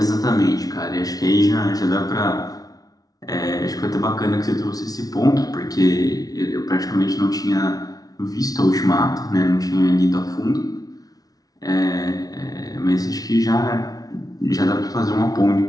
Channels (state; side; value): late; right; 0.18 ms